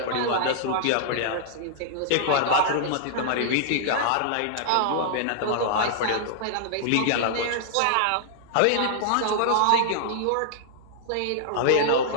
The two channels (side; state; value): both; different; correlation -0.01